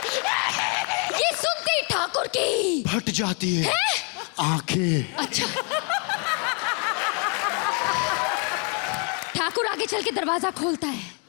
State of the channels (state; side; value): quieter; right; 36.9 dB